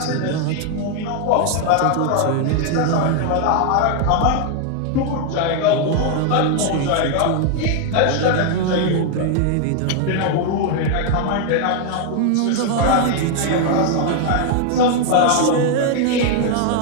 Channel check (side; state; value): both; different; correlation 0.00